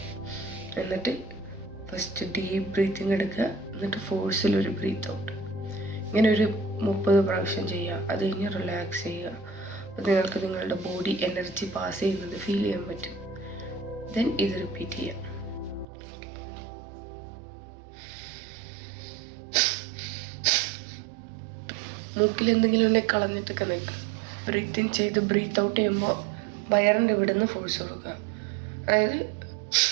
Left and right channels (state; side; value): drops out; left; at 15.9 s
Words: എന്നിട്ട് ഫസ്റ്റ് ഡീപ്പ് ബ്രീത്തിങ് എടുക്കുക. എന്നിട്ട് ഫോഴ്സിലൊരു ബ്രീത്ത് ഔട്ട്. ഇങ്ങനെ ഒരു 30 പ്രാവശ്യം ചെയ്യുക. അത് കഴിഞ്ഞ് റിലാക്സ് ചെയ്യുക. അപ്പോൾ നിങ്ങൾക്ക് നിങ്ങളുടെ ബോഡി എനർജി പാസ് ചെയ്യുന്നത് ഫീൽ ചെയ്യാൻ പറ്റും. ദെൻ ഇത് റിപ്പീറ്റ് ചെയ്യുക. മൂക്കിൽ എന്തെങ്കിലും ഉണ്ടെങ്കിൽ കളഞ്ഞിട്ടൊക്കെ നിൽക്കുക. ബ്രീത്ത് ഇൻ ചെയ്ത് ബ്രീത്ത് ഔട്ട് ചെയ്യുമ്പോൾ വയറിൻ്റെ ഇവിടെ നിന്ന് ഫോഴ്സ് കൊടുക്കുക. അതായത്